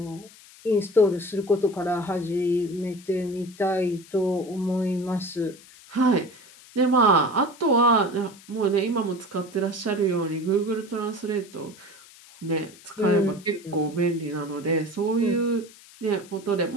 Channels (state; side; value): noise; left; hiss, 22 dB below the sound